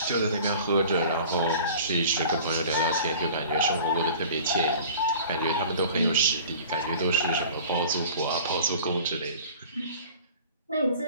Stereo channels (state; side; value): inverted; both; correlation -0.44